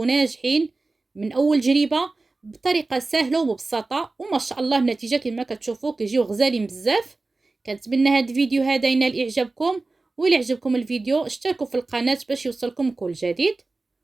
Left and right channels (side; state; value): left; quieter; 3.4 dB